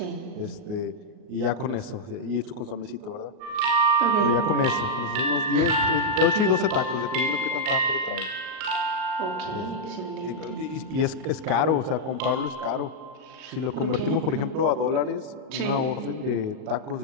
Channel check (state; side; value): late; left; 38 ms